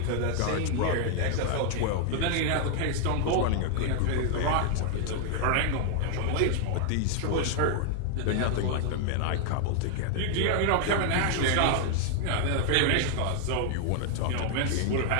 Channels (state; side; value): different; both; correlation 0.00